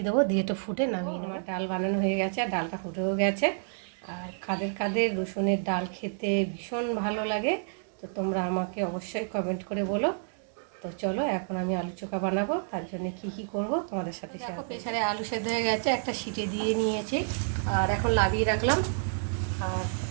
দেবো, দিয়ে একটু ফুটে নামিয়ে আমার ডাল বানানো হয়ে গেছে, আর ডালটা ফুটেও গেছে। আর কাদের কাদের রসুনের ডাল খেতে ভীষণ ভালো লাগে, তো তোমরা আমাকে অবশ্যই কমেন্ট করে বলো। তো চলো এখন আমি আলু চোখা বানাবো, তার জন্য কি করব তোমাদের সাথে শেয়ার করব। প্রেসারে আলু সেদ্ধ হয়ে গেছে, একটা সিটি দিয়ে নিয়েছি, আর এখন লাগিয়ে রাখলাম। আর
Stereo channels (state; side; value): silent; left; digital silence